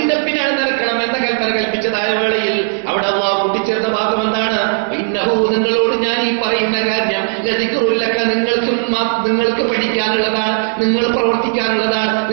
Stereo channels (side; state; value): left; silent; 69 dB below the other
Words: പിന്നാലെ നടക്കണം എന്ന കൽപ്പന കൽപ്പിച്ചതായ വേളയിൽ അവിടെ അല്ലാഹു കൂട്ടിച്ചേർത്ത ഭാഗം എന്താണ്? ഇന്നഹു, നിങ്ങളോട് ഞാൻ ഈ പറയുന്ന കാര്യം ലദിക്റുല്ലക, നിങ്ങൾക്ക് പഠിക്കാനുള്ളതാണ്, നിങ്ങൾ പ്രവർത്തിക്കാനുള്ളതാണ്,